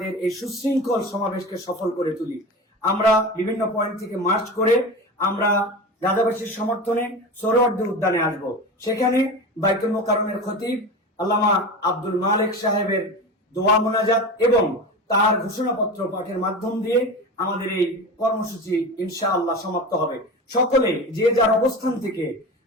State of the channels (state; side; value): normal; both; correlation 0.28